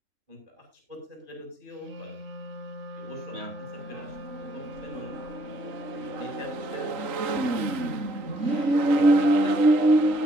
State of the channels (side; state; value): left; late; 3.8 ms